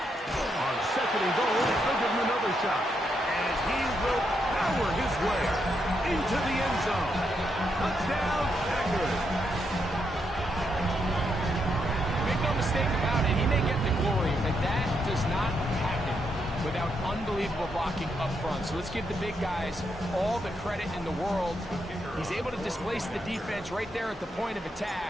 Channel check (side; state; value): both; normal; correlation 0.80